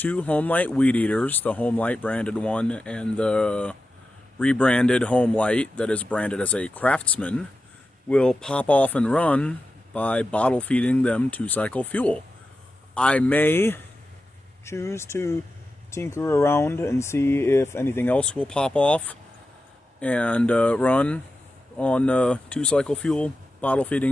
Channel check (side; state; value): both; normal; correlation 0.91